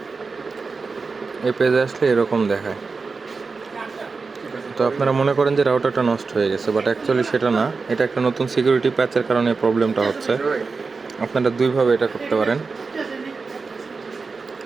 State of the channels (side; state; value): left; quieter; 4.4 dB